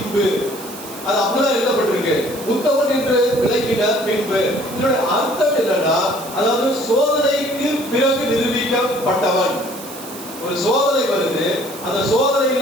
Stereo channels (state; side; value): noise; right; hiss, 14 dB below the sound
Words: அது அப்படிதான் எழுதப்பட்டிருக்கு. உத்தமன் என்று விளங்கின பின்பு இதனுடைய அர்த்தம் என்னன்னா, அதாவது சோதனைக்கு பிறகு நிரூபிக்கப்பட்டவன். ஒரு சோதனை வருது, அந்த